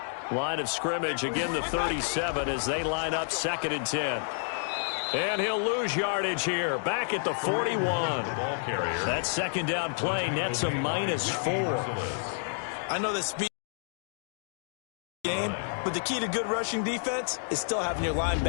Line of scrimmage, again the 37 as they line up 2nd and 10. And he'll lose yardage here, back at the 41. That 2nd down play nets a -4. I know the speed game, but the key to good rushing defense is still having your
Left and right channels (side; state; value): right; silent; digital silence